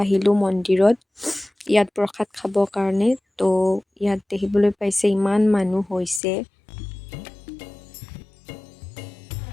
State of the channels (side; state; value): right; drops out; at 6.2 s